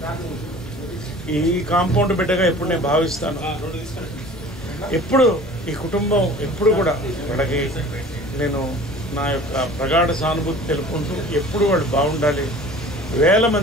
ఈ కాంపౌండ్ బిడ్డగా ఎప్పుడు నేను భావిస్తాను. ఎప్పుడు ఈ కుటుంబం ఎప్పుడు కూడా వాళ్ళకి నేను నా యొక్క ప్రగాఢ సానుభూతి తెలుపుకుంటూ ఎప్పుడు వాళ్ళు బాగుండాలి. వేల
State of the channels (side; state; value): both; normal; correlation 0.44